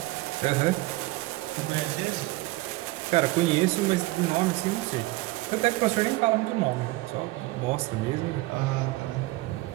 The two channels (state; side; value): quieter; left; 20.0 dB